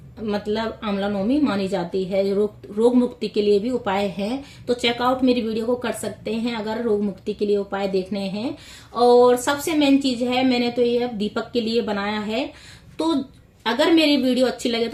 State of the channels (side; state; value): both; identical; correlation 1.00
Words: मतलब आंवला नवमी मानी जाती है। रोग मुक्ति के लिए भी उपाय हैं, तो चेकआउट मेरी वीडियो को कर सकते हैं अगर रोग मुक्ति के लिए उपाय देखने हैं। और सबसे मेन चीज है, मैंने तो ये दीपक के लिए बनाया है। तो अगर मेरी वीडियो अच्छी लगे